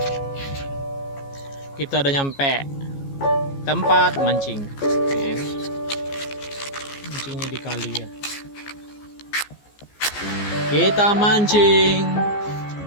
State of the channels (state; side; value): late; right; 14 ms